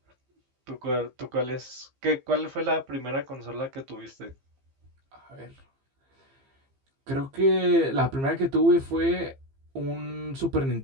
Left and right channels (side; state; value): left; late; 15 ms